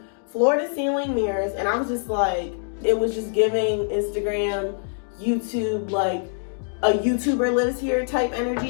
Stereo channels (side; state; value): right; silent; digital silence